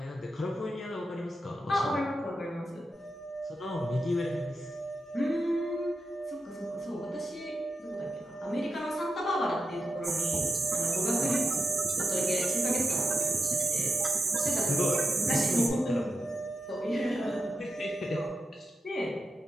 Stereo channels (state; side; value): normal; both; correlation 0.88